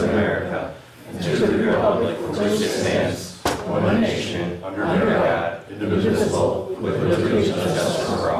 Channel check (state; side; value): identical; both; correlation 1.00